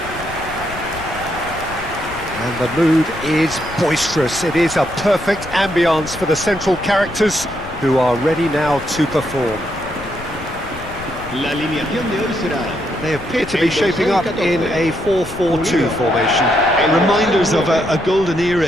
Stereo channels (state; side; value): noise; left; rumble, 14 dB below the sound